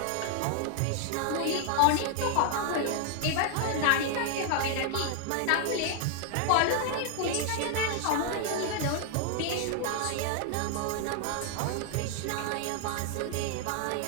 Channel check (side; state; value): both; different; correlation 0.00